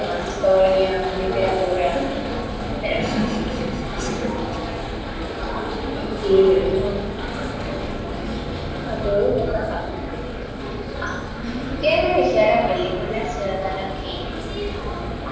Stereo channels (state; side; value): identical; both; correlation 1.00